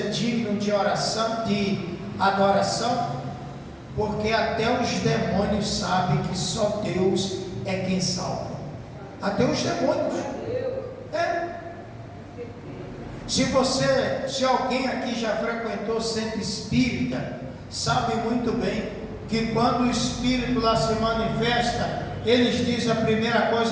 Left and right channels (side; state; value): both; identical; correlation 1.00